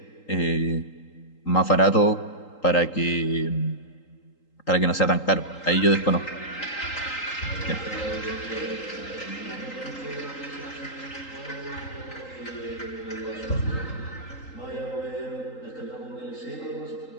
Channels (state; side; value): late; right; 3.8 ms